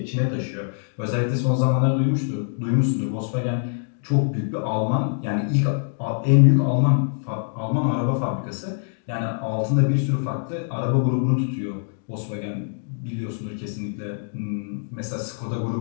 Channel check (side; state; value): right; silent; digital silence